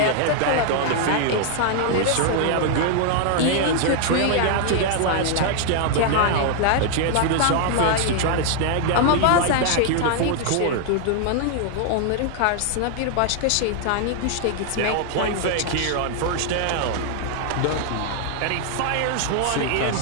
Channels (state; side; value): different; both; correlation 0.00